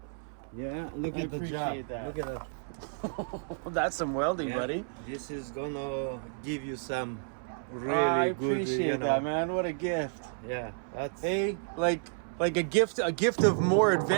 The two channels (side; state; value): left; silent; 57 dB below the other